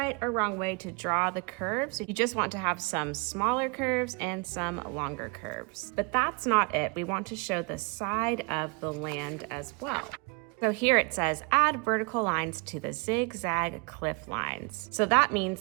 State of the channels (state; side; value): quieter; left; 31.8 dB